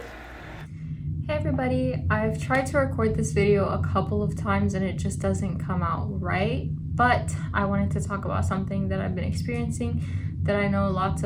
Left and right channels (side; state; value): both; identical; correlation 1.00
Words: Hey everybody, I've tried to record this video a couple of times and it just doesn't come out right, but I wanted to talk about something that I've been experiencing that I know lots